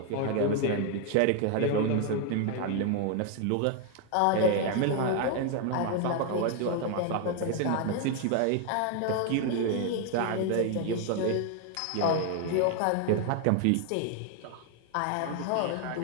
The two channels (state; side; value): different; both; correlation 0.00